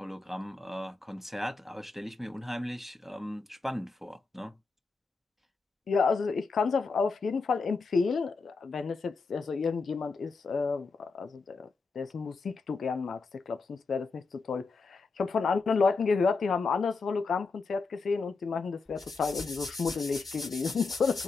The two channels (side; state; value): right; quieter; 4.3 dB